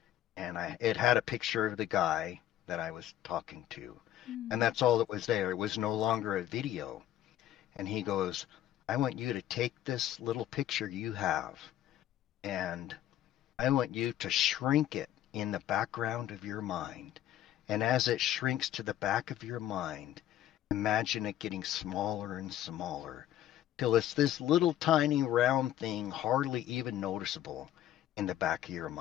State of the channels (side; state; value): right; quieter; 12.2 dB